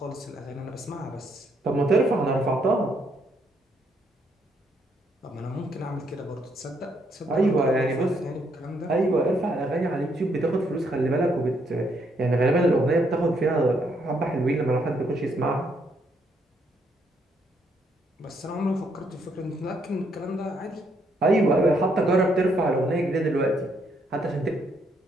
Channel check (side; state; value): both; normal; correlation 0.73